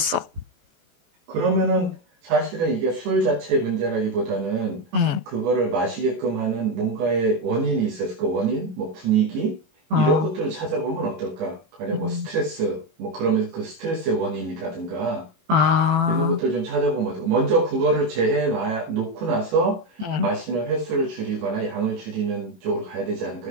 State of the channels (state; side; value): late; left; 18 ms